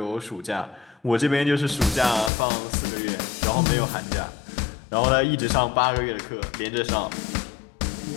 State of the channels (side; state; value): right; drops out; at 2.3 s